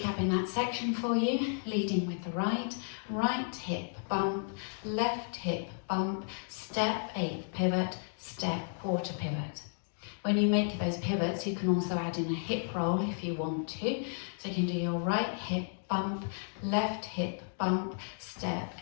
that section for you, leading with the right, right hip bump, left hip bump, step, 8th pivot, step, quarter pivot. When you make those pivots, you can also add in a hip roll if you want to. So you can do your right hip bump, left hip bump, step,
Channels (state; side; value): silent; right; digital silence